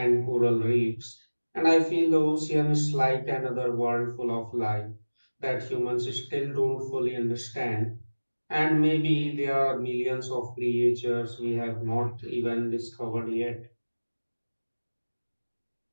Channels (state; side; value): inverted; both; correlation -1.00